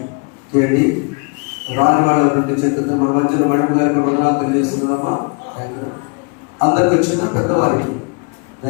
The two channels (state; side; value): quieter; right; 33.6 dB